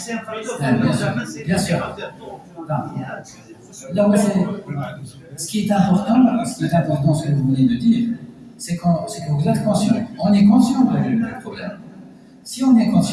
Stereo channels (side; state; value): both; identical; correlation 1.00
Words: un facteur. Bien sûr. Là, ce qui est important, ce que vous venez de dire, c'est que vous êtes conscient. On est conscient du problème. Si on est